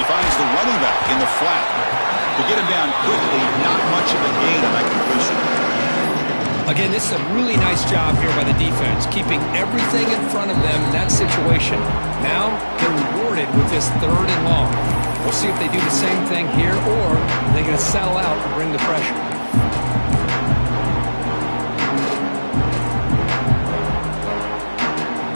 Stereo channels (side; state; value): both; inverted; correlation -1.00